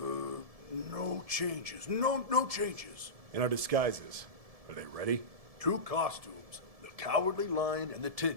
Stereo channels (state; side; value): late; left; 1.7 ms